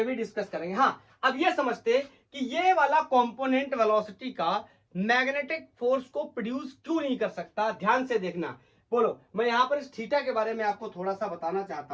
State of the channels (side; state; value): both; identical; correlation 1.00